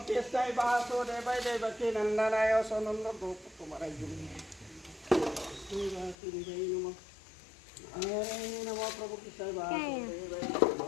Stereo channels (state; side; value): drops out; right; at 6.2 s